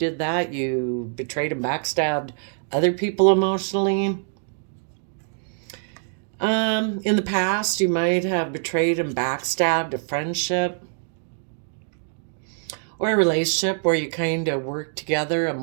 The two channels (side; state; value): left; silent; digital silence